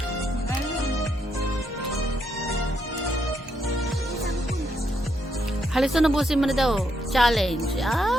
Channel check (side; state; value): both; normal; correlation 0.77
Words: Halos na nabusin mo na daw. Challenge.